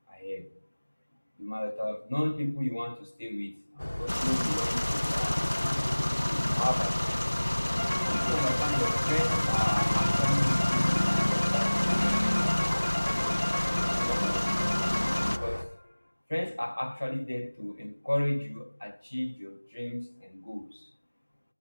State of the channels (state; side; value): inverted; both; correlation -1.00